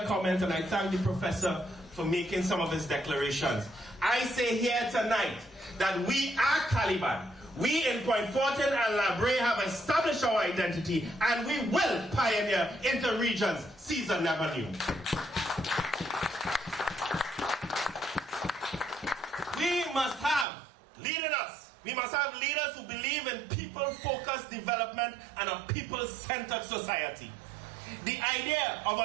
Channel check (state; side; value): drops out; left; at 20.5 s